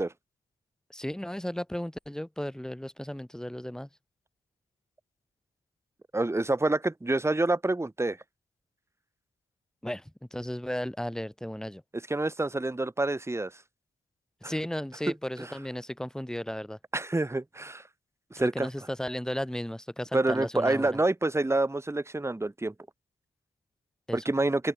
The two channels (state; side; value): normal; both; correlation 0.88